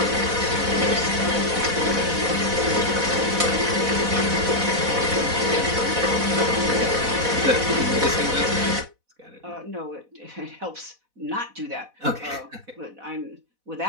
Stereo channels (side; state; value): left; late; 4.1 ms